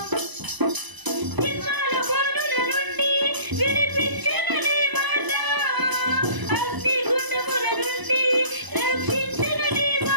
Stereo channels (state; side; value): late; left; 1.0 ms